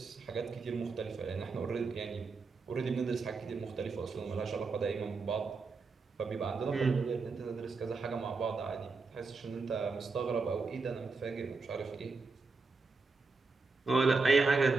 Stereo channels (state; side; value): quieter; left; 4.2 dB